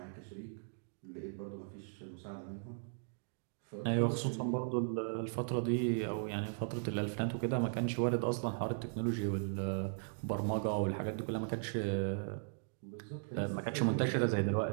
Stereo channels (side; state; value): left; silent; digital silence